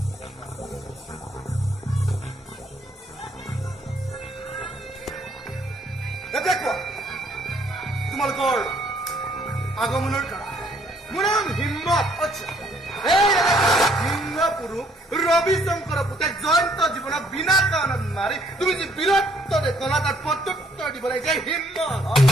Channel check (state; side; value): normal; both; correlation 0.65